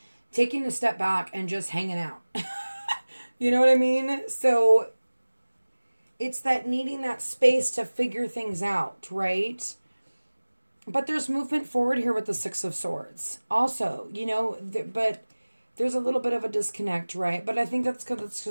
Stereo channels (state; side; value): inverted; both; correlation -1.00